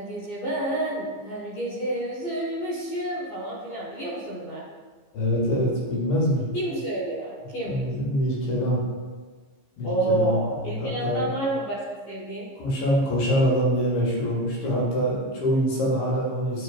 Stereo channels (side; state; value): right; late; 15 ms